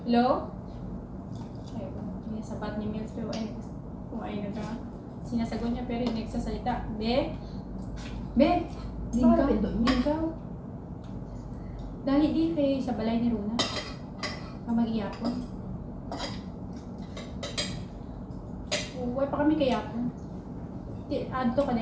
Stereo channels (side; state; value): both; identical; correlation 1.00